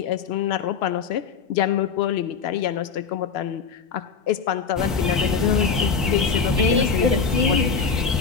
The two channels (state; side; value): quieter; right; 5.6 dB